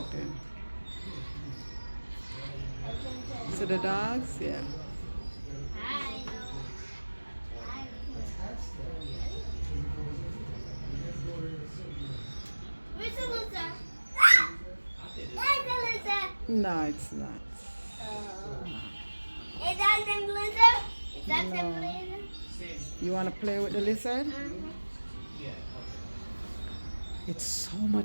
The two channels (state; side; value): inverted; both; correlation -1.00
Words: then. So the dogs, yeah. Where's the lizard? Where's the lizard? No, it's not. Is that the lizard? Is that the No. lizard? You want to play with the lizard? It's so